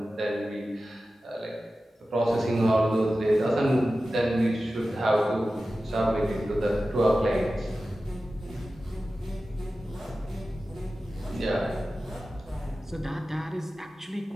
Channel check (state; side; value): normal; both; correlation 0.94